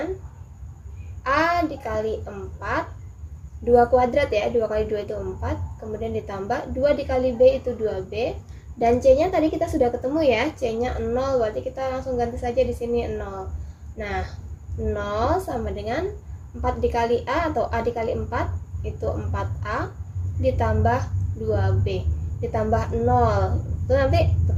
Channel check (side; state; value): both; identical; correlation 1.00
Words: A dikali 4, 2 kuadrat ya, 2 kali 2 itu 4, kemudian ditambah 2 dikali B itu 2B, dan C-nya tadi kita sudah ketemu ya, C-nya 0, berarti kita langsung ganti saja di sini 0. Nah, 0 sama dengan 4 dikali A atau A dikali 4, itu 4A, ditambah 2B, ditambah 0. Itu nanti